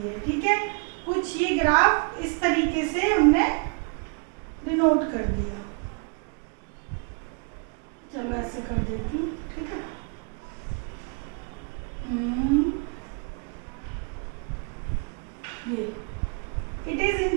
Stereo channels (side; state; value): left; quieter; 36.7 dB